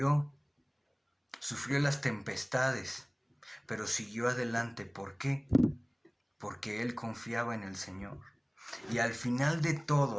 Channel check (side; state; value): both; identical; correlation 1.00